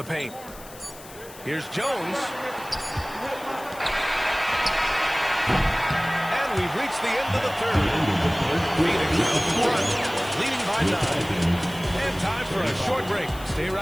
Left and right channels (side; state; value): left; noise; hiss, 18 dB below the sound